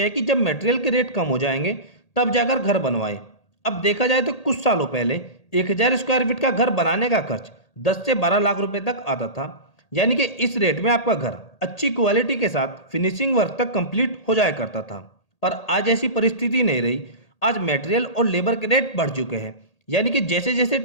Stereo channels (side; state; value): right; late; 1.8 ms